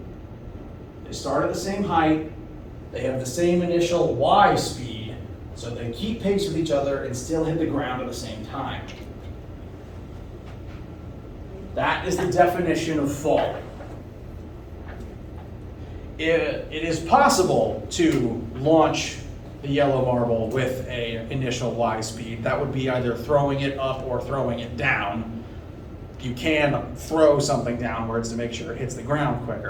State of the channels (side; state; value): both; identical; correlation 1.00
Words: They start at the same height, they have the same initial y speed, so they keep pace with each other and still hit the ground at the same time. That is the definition of fall. It is possible to launch the yellow marble with an initial y speed. That would be either throwing it up or throwing it down. You can throw something downwards to make sure it hits the ground